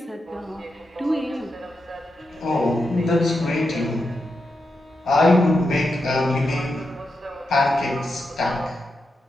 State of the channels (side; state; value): both; normal; correlation 0.86